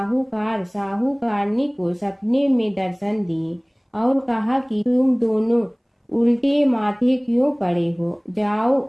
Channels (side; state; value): both; identical; correlation 1.00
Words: को सपने में दर्शन दिए और कहा कि तुम दोनों उल्टे माथे क्यों पड़े हो, जाओ